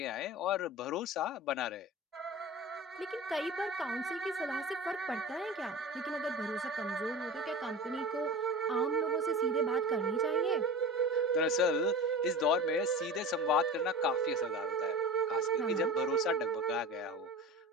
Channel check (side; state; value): both; normal; correlation 0.33